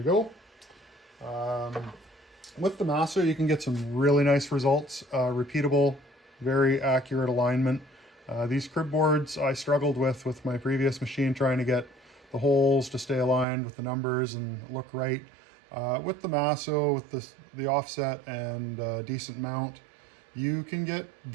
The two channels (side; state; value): left; drops out; at 13.5 s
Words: go. With the Masso, you can get some really nice results, repeatable, very accurate alignment. These crib boards I struggled with my previous machine, trying to get the holes to stay aligned with the numbers and look right. With the Masso, with the offset and decent mount, you can get